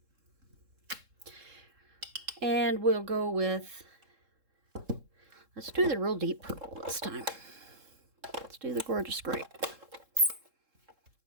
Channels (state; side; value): late; left; 3.7 ms